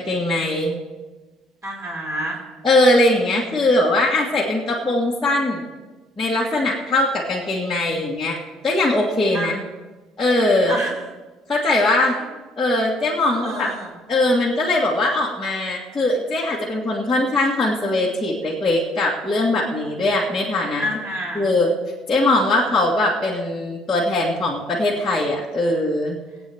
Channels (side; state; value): both; normal; correlation 0.64